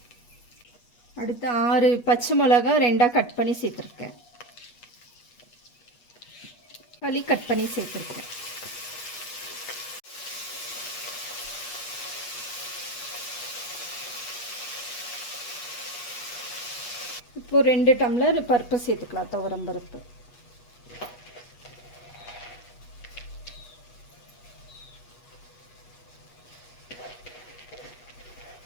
அடுத்து 6 பச்சை மிளகா 2ஆக கட் பண்ணி சேர்த்துருக்கேன். தக்காளி கட் பண்ணி சேர்த்துருக்கேன். இப்போ 2 டம்ளர் பருப்பு சேர்த்துக்கலாம். துவரம் பருப்பு.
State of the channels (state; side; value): late; right; 8.3 ms